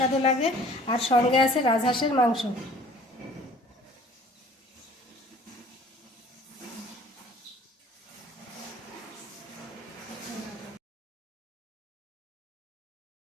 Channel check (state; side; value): normal; both; correlation 0.51